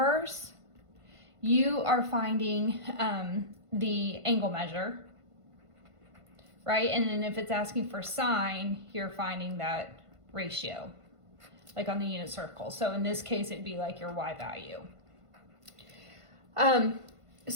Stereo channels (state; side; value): late; left; 1.5 ms